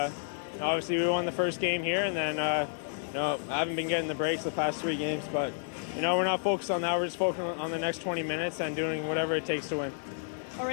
obviously we won the first game here, and then, I haven't been getting the breaks the past 3 games. But, we're not focused on that. We're just focused on the next 20 minutes and doing whatever it takes to win. All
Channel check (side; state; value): right; silent; 57 dB below the other